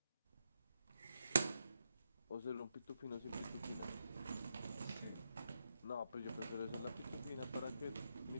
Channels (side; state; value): both; inverted; correlation -0.83